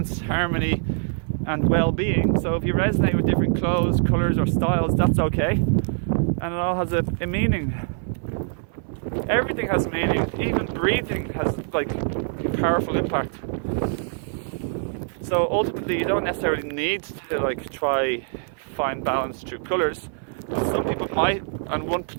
harmony and well-being. So if you resonate with different clothes, colours or styles, that's okay. And it all has a meaning. Everything has meaning, even breathing has like a powerful impact. So ultimately you don't necessarily need to like try find balance through colours. Some people might on one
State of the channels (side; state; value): left; silent; 60 dB below the other